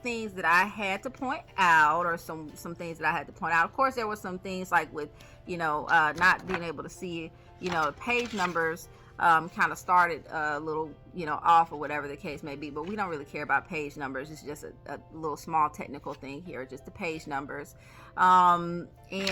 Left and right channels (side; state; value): both; identical; correlation 1.00